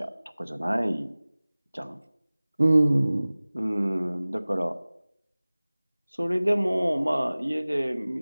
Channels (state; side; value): inverted; both; correlation -0.99